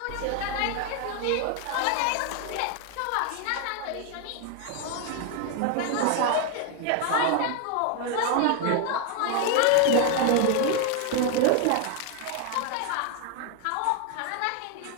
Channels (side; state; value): both; different; correlation 0.01